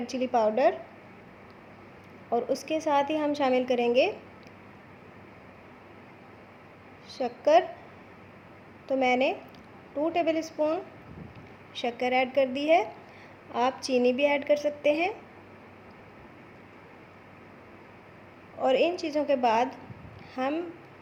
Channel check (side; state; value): both; identical; correlation 1.00